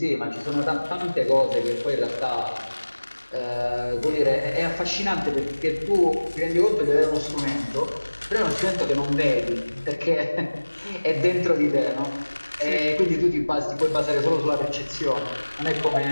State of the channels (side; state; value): both; inverted; correlation -1.00